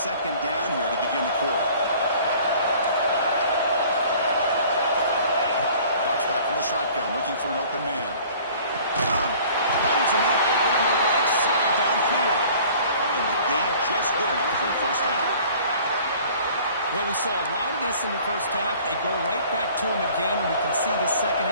down here to begin the quarter. Drops back from the shotgun, looking for an open man. Finds a man open on the right side downfield. And the game just good enough for a first down. Well, we saw a lot of this in the first half. They go right back to him again, and we can see the second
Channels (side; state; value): both; inverted; correlation -0.50